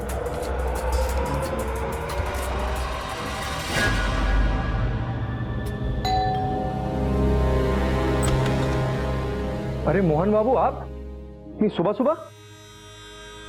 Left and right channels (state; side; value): identical; both; correlation 1.00